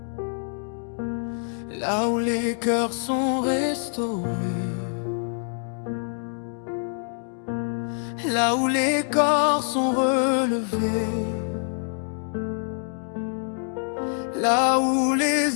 là où les cœurs sont restaurés, là où les corps sont relevés, là où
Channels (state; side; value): silent; right; digital silence